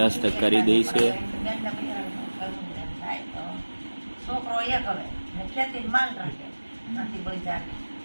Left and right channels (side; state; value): both; inverted; correlation -1.00